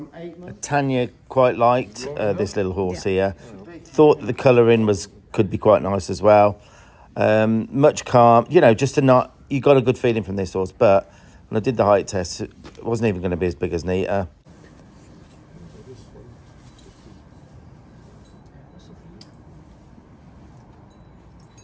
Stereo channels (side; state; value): both; identical; correlation 1.00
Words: 8 months. Tanya quite liked this little horse here. Thought the colouring could be quite nice as well. Much calm, you know, just you got a good feeling from this horse. But when I did the height test, it wasn't even going to be as big as Nita.